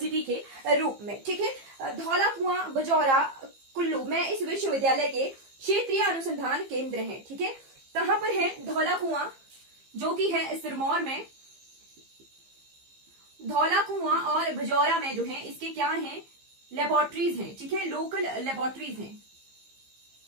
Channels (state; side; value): late; left; 15 ms